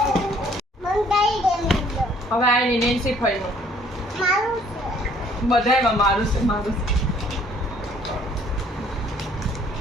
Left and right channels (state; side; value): normal; both; correlation 0.60